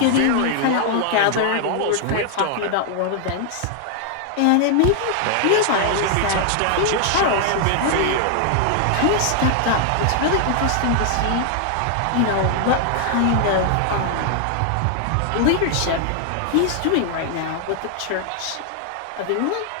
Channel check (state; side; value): different; both; correlation 0.00